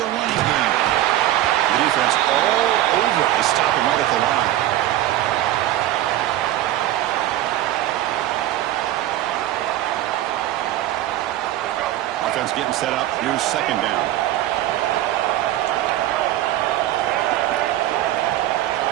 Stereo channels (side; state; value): left; quieter; 13.9 dB